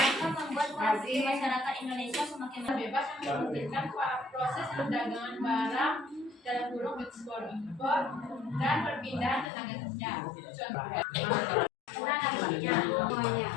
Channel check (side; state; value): right; drops out; at 9.5 s